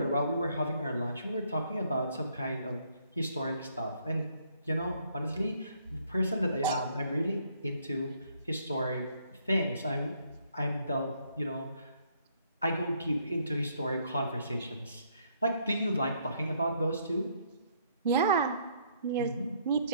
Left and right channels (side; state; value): both; inverted; correlation -0.68